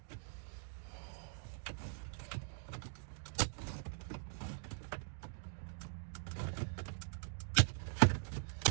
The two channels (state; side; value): silent; left; digital silence